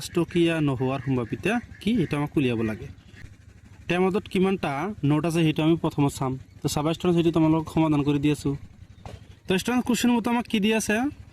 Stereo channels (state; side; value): identical; both; correlation 1.00